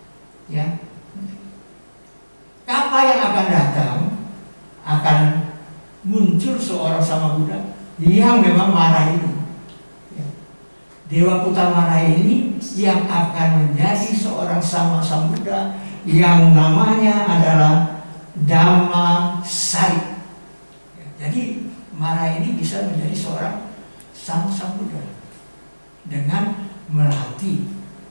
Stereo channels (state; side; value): inverted; both; correlation -1.00